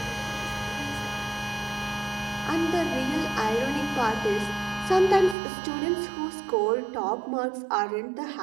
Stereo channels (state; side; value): drops out; left; at 5.4 s